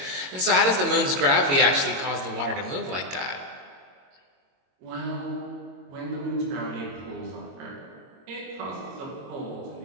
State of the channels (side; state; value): left; late; 22 ms